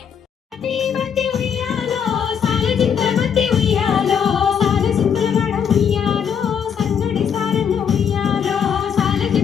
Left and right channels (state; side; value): quieter; right; 7.6 dB